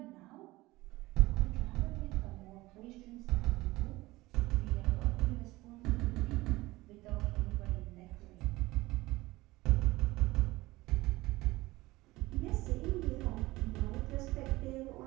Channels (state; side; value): quieter; left; 19.5 dB